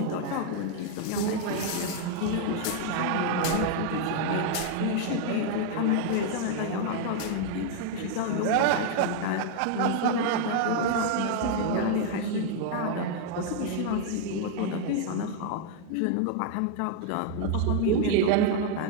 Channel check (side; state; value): both; different; correlation 0.00